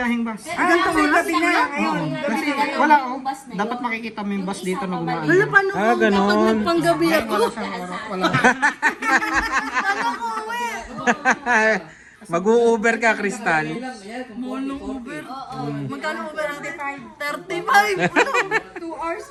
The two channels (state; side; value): identical; both; correlation 1.00